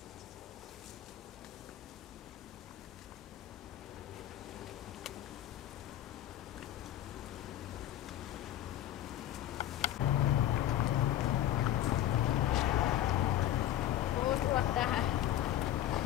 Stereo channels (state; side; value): quieter; right; 12.3 dB